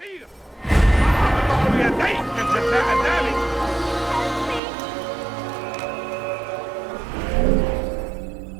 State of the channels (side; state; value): left; drops out; at 4.6 s